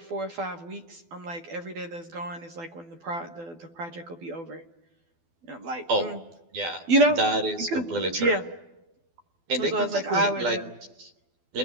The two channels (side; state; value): left; late; 12 ms